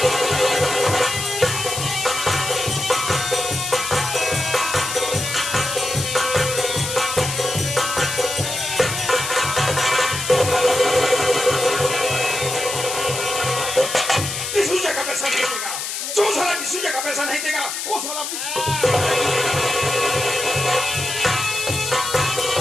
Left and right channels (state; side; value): noise; left; hiss, 4 dB below the sound